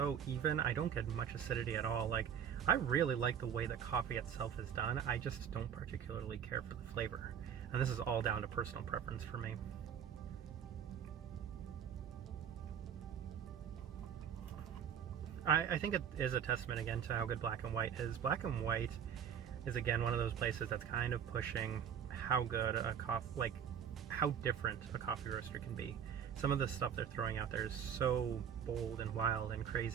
even. I don't get much acidity at all. Like, I really like the way the coffee itself is done. I just don't particularly care for the flavor. And this is all down to personal preference for me. I think it is a testament again to how good black and white is. Black and white is again one of those places that's kind of pushing how good a coffee, how different a coffee roaster can be. Some of the stuff they're throwing out there is so bold and wild and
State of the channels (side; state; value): left; quieter; 8.4 dB